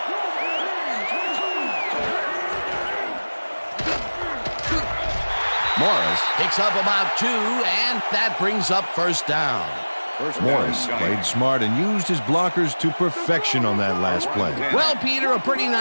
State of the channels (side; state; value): both; inverted; correlation -1.00